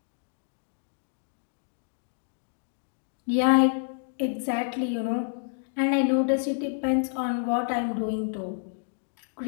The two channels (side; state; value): right; silent; digital silence